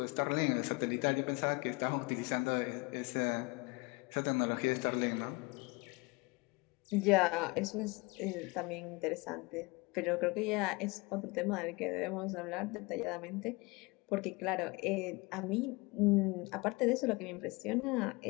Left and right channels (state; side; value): quieter; right; 25.5 dB